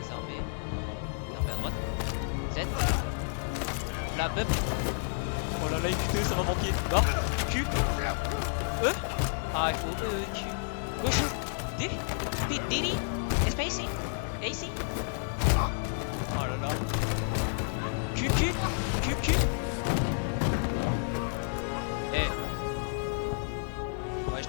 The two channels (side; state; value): right; silent; digital silence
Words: Désarmé à droite. Z. La bub. Oh là là, écoutez, ça va manquer. Barre. Q. E. Ah, il faut E, Q. Gauche. D. D. Space. AC. Oh là là. Q. Eh. Ouais, je